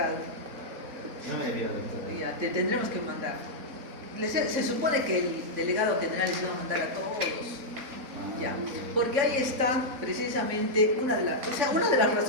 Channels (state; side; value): late; left; 3.6 ms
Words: No me había dado. Ya, te tendremos que mandar. Se supone que el delegado general les va a mandar a todos. Ya, porque ahí está precisamente una de las